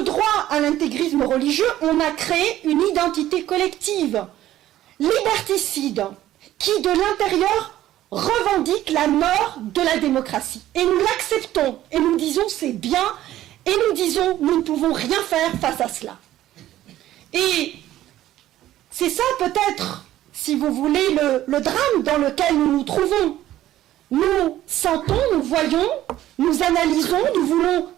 droit à l'intégrisme religieux, on a créé une identité collective, liberticide, qui de l'intérieur revendique la mort de la démocratie. Et nous l'acceptons, et nous disons c'est bien, et nous disons nous ne pouvons rien faire face à cela. Et c'est ça peut-être, si vous voulez, le drame dans lequel nous nous trouvons. Nous sentons, nous voyons, nous analysons, nous voulons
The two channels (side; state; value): left; quieter; 13.6 dB